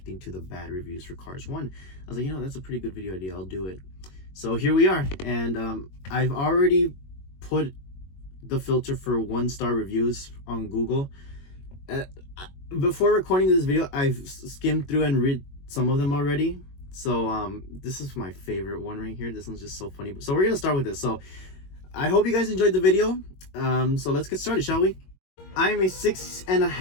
to the bad reviews for Cars 1. I was like, that's a pretty good video idea, I'll do it. So here we are, and I've already put the filter for 1-star reviews on Google. Before recording this video, I've skimmed through and read some of them already. So this is my favorite one right here. This one's just so funny. So we're gonna start with this. So I hope you guys enjoyed the video. So let's get started, shall we? I am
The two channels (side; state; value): right; late; 21 ms